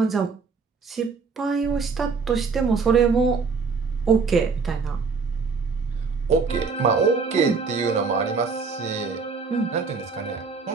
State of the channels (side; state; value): left; quieter; 4.9 dB